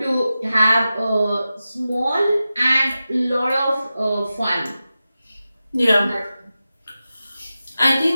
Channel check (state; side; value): inverted; both; correlation -0.93